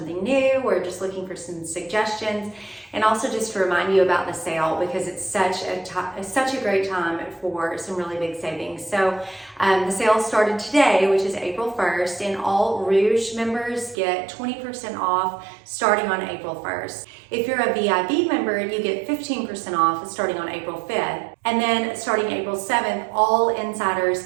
new or just looking for some suggestions, and also just to remind you about the sale because it's such a great time for some really big savings. So the sale started today, which is April 1st, and all Rouge members get 20% off starting on April 1st. If you're a VIP member, you get 15% off starting on April 5th. And then starting April 7th, all insiders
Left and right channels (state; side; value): drops out; left; at 14.0 s